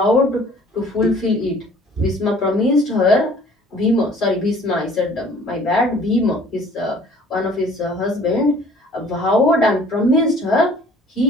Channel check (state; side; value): normal; both; correlation 0.53